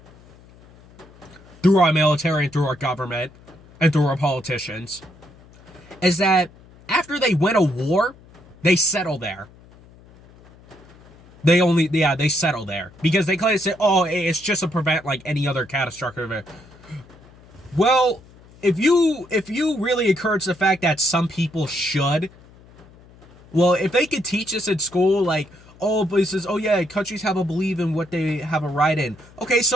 through our military and through our government and through our politicians, is that after they win a war, they settle there. They settle there because they claim to say, oh, it's just to prevent like any other catastrophic event. Well, if you really encourage the fact that some people should, well, if they could teach us in school, like, oh, places, oh yeah, countries have a belief in what they have a right in. Okay,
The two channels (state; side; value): noise; left; hum, 24 dB below the sound